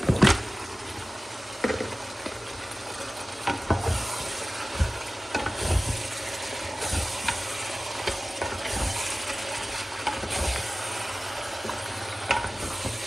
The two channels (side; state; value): both; normal; correlation 0.97